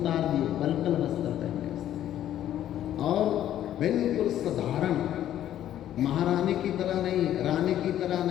दिए, बलकल वस्त्र पहने उसने और बिल्कुल साधारण महारानी की तरह नहीं, रानी की तरह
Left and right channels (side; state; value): right; quieter; 11.7 dB